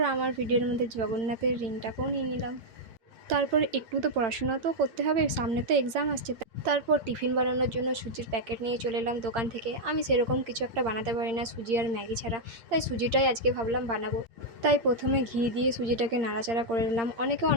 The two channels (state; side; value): late; left; 8.7 ms